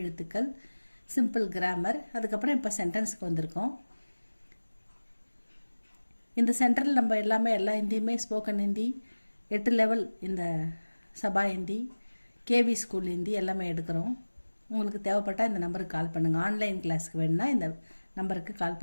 எழுத்துக்கள், சிம்பிள் கிராமர், அதுக்கப்புறம் இப்போ சென்டென்ஸுக்கு வந்திருக்கோம். இந்த சென்டரில் நம்ம எல்லா ஹிந்தியுமே ஸ்போக்கன் ஹிந்தி 8 லெவல், இந்த சபா ஹிந்தி, கேவி ஸ்கூல் ஹிந்தி எல்லாமே எடுக்கிறோம். உங்களுக்கு தேவைப்பட்டால் இந்த நம்பருக்கு கால் பண்ணுங்கள். ஆன்லைன் கிளாஸுக்கு வேணுன்னா இந்த நம்பருக்கு கால்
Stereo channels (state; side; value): inverted; both; correlation -1.00